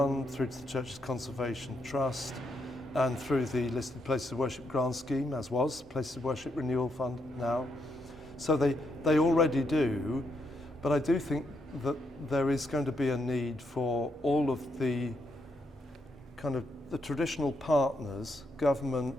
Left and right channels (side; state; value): both; normal; correlation 0.79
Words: through to the Church's Conservation Trust, and through the listed Places of Worship grant scheme, as was Places of Worship Renewal Fund now. So they already do, but I do think that there is going to be a need for all of the kind of the traditional partners,